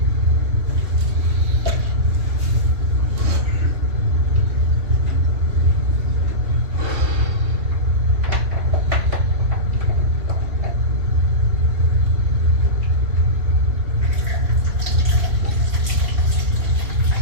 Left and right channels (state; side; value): late; left; 3.1 ms